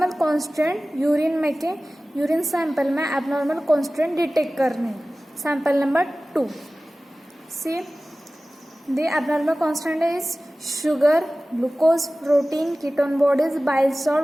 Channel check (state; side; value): normal; both; correlation 0.97